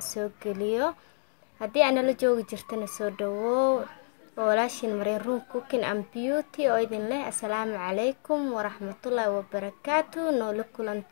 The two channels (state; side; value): silent; right; digital silence